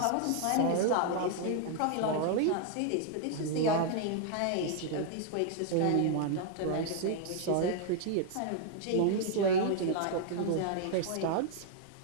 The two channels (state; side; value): different; both; correlation 0.00